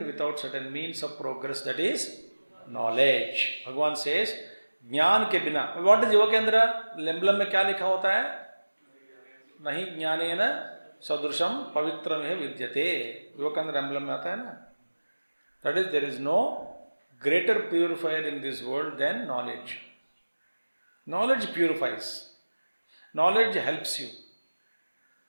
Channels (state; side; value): inverted; both; correlation -1.00